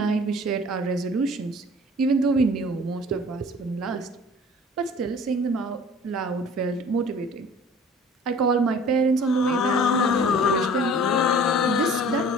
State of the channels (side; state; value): both; normal; correlation 0.48